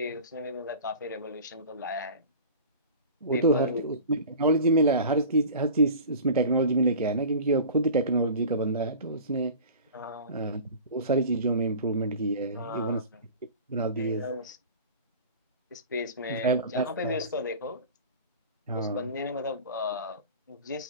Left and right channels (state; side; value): inverted; both; correlation -0.39